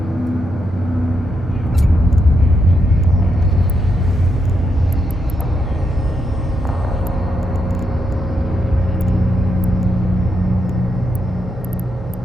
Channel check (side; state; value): both; normal; correlation 0.81